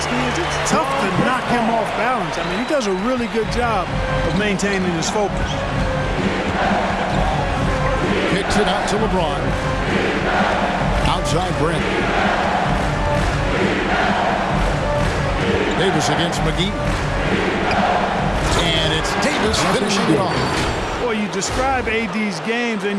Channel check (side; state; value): both; identical; correlation 1.00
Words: is, it's tough to knock him off balance. I mean, he does a really good job of maintaining his focus. Kicks it out to LeBron. Outside Brent. Davis against McGee. And it's Davis finishing it off. Boy, you describe AD's games